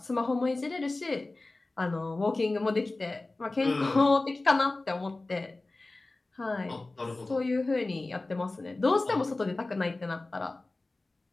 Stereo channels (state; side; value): quieter; right; 3.1 dB